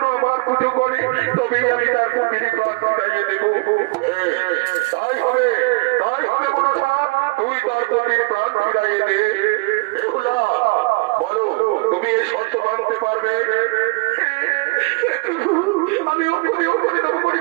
আমার পুজো করে, তবেই আমি তার পতির প্রাণ ফিরাইয়ে দেব। তাই হবে মনসা, তুই তার পতির প্রাণ ফিরাইয়ে দে। বেহুলা বলো, তুমি এই শর্ত মানতে পারবে? আমি করে তবে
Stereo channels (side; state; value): left; quieter; 28.2 dB